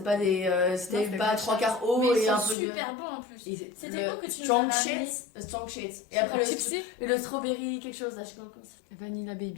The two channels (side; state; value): right; drops out; at 2.6 s